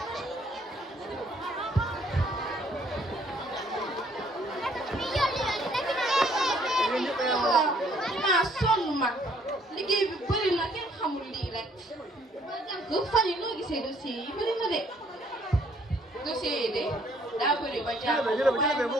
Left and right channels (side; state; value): both; normal; correlation 0.63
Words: maa sonn man liggéey bi bëri na kenn xamul lii rek ba jànk fan yi noo gisee dossier yi bëri na de dossier yi de daa bëri ba jànk waaye lu